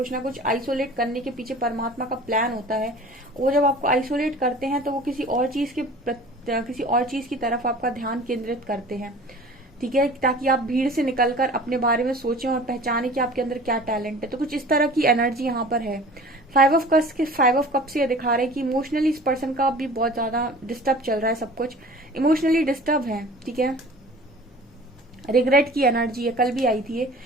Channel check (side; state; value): both; normal; correlation 0.43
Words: ना कुछ आइसोलेट करने के पीछे परमात्मा का प्लान होता है। वो जब आपको आइसोलेट करते हैं तो वो किसी और चीज की तरफ आपका ध्यान केंद्रित करते हैं, ठीक है, ताकि आप भीड़ से निकलकर अपने बारे में सोचें और पहचाने कि आपके अंदर क्या टैलेंट है। तो कुछ इस तरह की एनर्जी यहाँ पर है। 5 ऑफ कप से ये दिखा रहे हैं कि इमोशनली इस पर्सन का भी बहुत ज्यादा डिस्टर्ब चल रहा है, सब कुछ इमोशनली डिस्टर्ब है, ठीक है। रिग्रेट की एनर्जी है, कल भी आई थी ये,